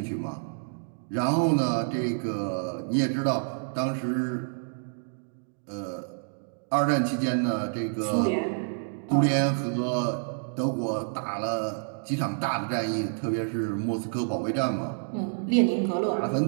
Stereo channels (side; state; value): left; silent; digital silence